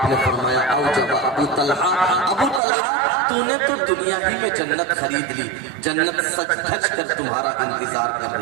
نے فرمایا اوجب ابو طلحہ تو نے تو دنیا ہی میں جنت خرید لی، جنت سچ دھج کر تمہارا انتظار کر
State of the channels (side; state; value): left; drops out; at 2.6 s